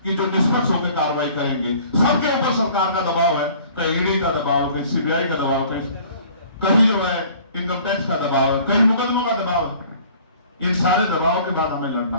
कि जो निष्पक्ष होकर कार्रवाई करेंगे। सबके ऊपर सरकार का दबाव है, कहीं ईडी का दबाव, कहीं सीबीआई का दबाव, कहीं जो है इनकम टैक्स का दबाव है, कहीं मुकदमों का दबाव है। इन सारे दबाव के बाद हमें लड़ना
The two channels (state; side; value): inverted; both; correlation -0.51